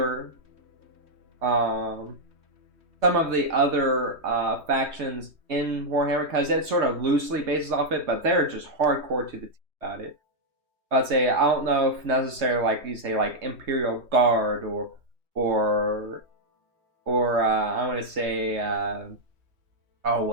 um, some of the other factions in Warhammer, because it sort of loosely bases off it, but they're just hardcore to the teeth about it. I'd say I don't know if necessarily like you say like Imperial Guard or I want to say oh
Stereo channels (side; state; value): left; late; 3.2 ms